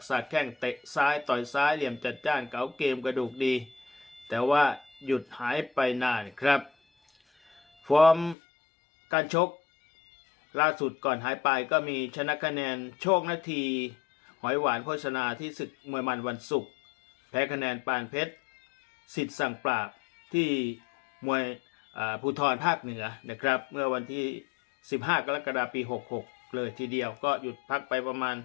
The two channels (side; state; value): right; drops out; at 8.3 s